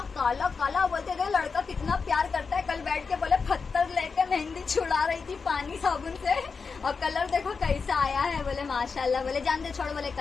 काला काला, बोलते थे लड़का कितना प्यार करता है। कल बैठ के बोले पत्थर लेके मेहंदी छुड़ा रही थी पानी साबुन से, और कलर देखो कैसा आया है। बोले माशाल्लाह, बोले जान दे छोड़, बोले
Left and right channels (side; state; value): right; quieter; 5.0 dB